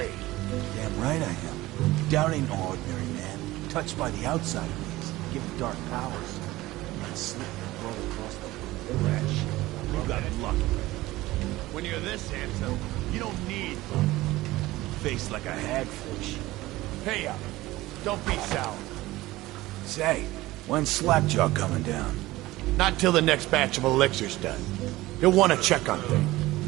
Damn right I am. Dowd ain't no ordinary man. Touched by the outside ways, given dark powers. Might slip and roll across the fresh. You got lucky. When you're this handsome, you don't need luck. Face like a hagfish. Hey up. Don't be sour. Say, when's Slackjaw coming down? Not till the next batch of elixirs done. He'll want to check on things.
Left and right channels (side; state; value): left; quieter; 18.1 dB